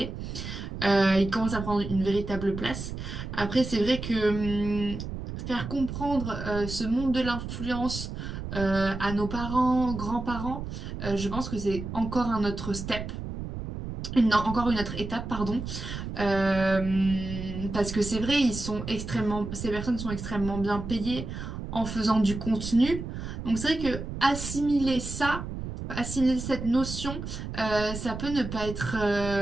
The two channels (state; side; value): noise; right; rumble, 7 dB below the sound